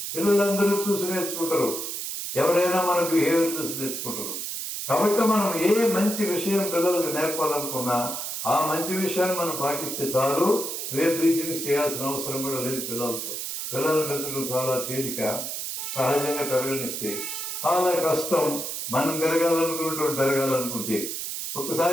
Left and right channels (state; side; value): noise; right; hiss, 5 dB below the sound